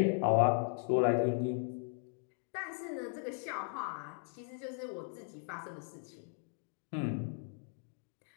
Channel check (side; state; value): right; silent; 53 dB below the other